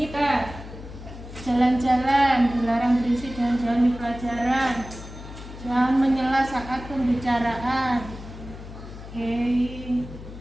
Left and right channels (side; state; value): left; noise; hum, 13 dB below the sound